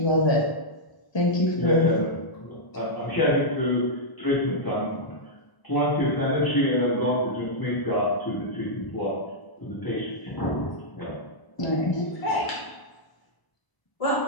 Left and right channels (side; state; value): right; late; 1.0 ms